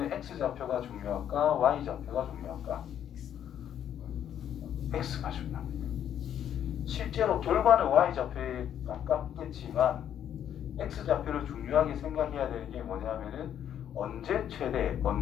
x좌표가 중요할까 y좌표가 중요할까? x가 중요합니다. 실제로 결과는 y좌표에 가깝겠지만 x좌표를 중요하게 생각해야 되는 게 뭐냐면은 언제 최대,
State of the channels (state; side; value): quieter; right; 9.9 dB